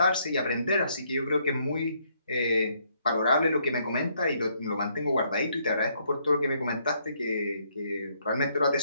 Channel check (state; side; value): inverted; both; correlation -0.71